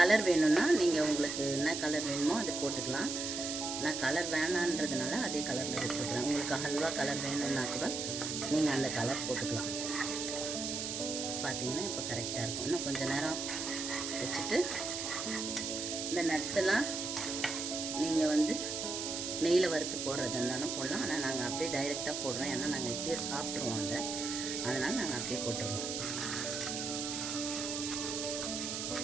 வேணும்னா நீங்கள் உங்களுக்கு என்ன கலர் வேணுமோ அதை போட்டுக்கலாம். நான் கலர் வேணான்றதுனால அதே கலரில் விட்டுருக்குறேன். உங்களுக்கு ஹல்வா கலர் வேணும்னா கூட நீங்கள் அந்த கலர் போட்டுக்கலாம். பார்த்தீங்கன்னா இப்போ கரெக்டாக இருக்கும். இன்னும் கொஞ்சம் நேரம் வச்சுட்டு இந்த நட்ஸ் எல்லாம் நீங்கள் வந்து நெய்யில் வறுத்து போடுறதா இருந்தாலும் போடலாம். ஆனால் நாங்கள் அப்படியே டைரெக்டாக போடுறோம். ஏன்னா நாங்கள் இப்பயே சாப்பிட்ருவோம் அதை, அதனால் நாங்கள் அப்படியே போட்டுருவோம்.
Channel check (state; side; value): noise; right; hiss, 3 dB below the sound